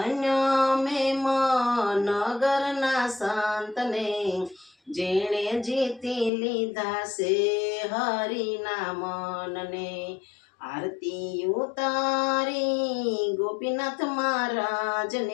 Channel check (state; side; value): drops out; right; at 6.3 s